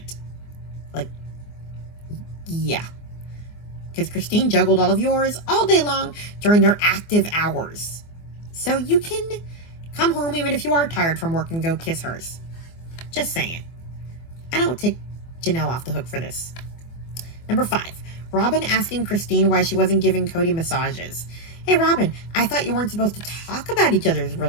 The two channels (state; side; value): late; right; 24 ms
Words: Like, yeah. Because Christine juggled all of yours all day long during their active hours. So you can come home even if you are tired from work and go kiss hers. Just saying. I don't take Janelle off the hook for this. Number 5. Robin asking Christine why she wasn't giving Cody massages. Hey, Robin, I thought you weren't supposed to talk about each other's